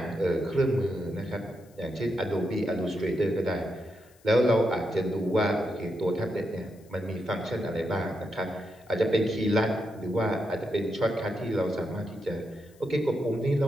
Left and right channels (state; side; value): noise; left; hiss, 30 dB below the sound